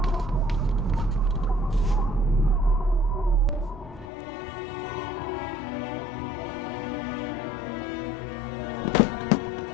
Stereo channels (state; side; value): drops out; right; at 4.1 s